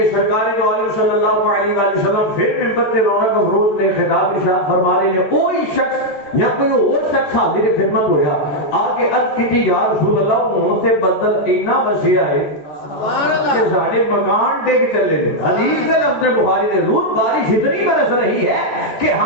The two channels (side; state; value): right; late; 14 ms